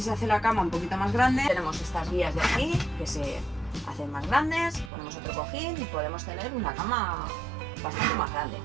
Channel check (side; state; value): left; drops out; at 4.9 s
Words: hace la cama un poquito más grande. Tenemos estas guías de aquí que se hacen más grandes, ponemos otro cojín y podemos tener una cama bastante más grande.